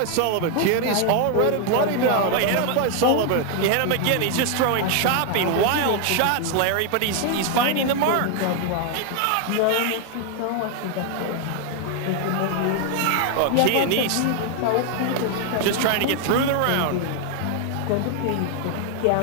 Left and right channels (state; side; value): different; both; correlation 0.01